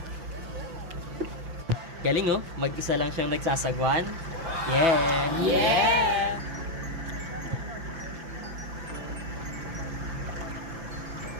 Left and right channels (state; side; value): late; left; 5.9 ms